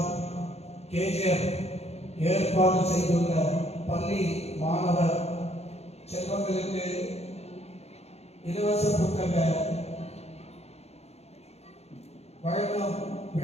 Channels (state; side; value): late; right; 0.31 ms